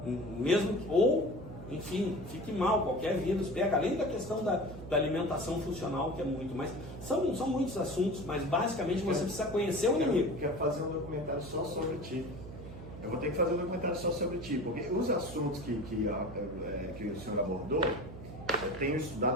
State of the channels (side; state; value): right; noise; hum, 12 dB below the sound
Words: Mesmo que, ou, enfim, fique mal, qualquer vírus pega, além da questão da alimentação funcional, que é muito, mas são muitos assuntos, mas basicamente você precisa conhecer o inimigo. Eu quero fazer um documentário só sobre ti. Eu vou ter que fazer um documentário só sobre ti, porque os assuntos que o senhor abordou, eu tenho